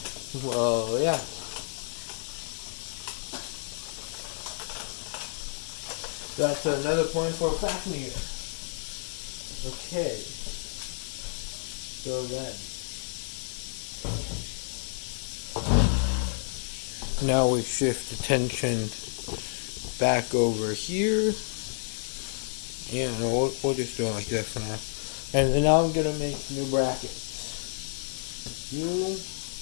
Well, yeah. That's another point for Fafnir. Okay. So then. Now we shift attention back over here. Yeah, no, we'll just do it like that for now. And now I'm going to make new brackets.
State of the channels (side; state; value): right; silent; digital silence